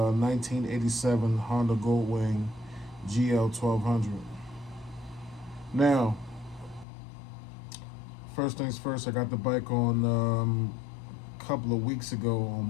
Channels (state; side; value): drops out; right; at 6.9 s